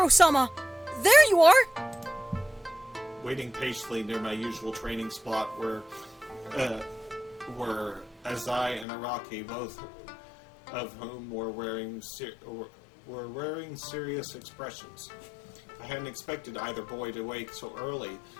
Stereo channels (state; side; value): drops out; right; at 8.8 s